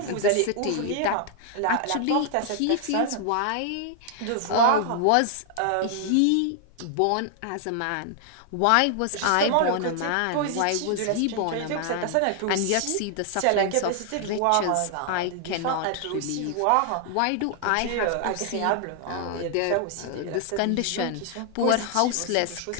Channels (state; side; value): different; both; correlation 0.00